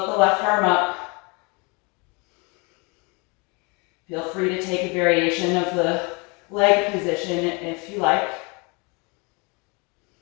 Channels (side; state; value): right; quieter; 30.2 dB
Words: the left arm up. Feel free to take a variation of the leg position if you like.